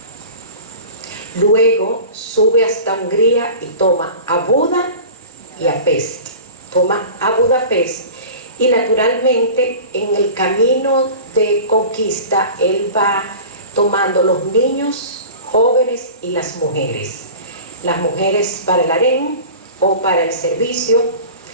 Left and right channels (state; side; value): inverted; both; correlation -0.38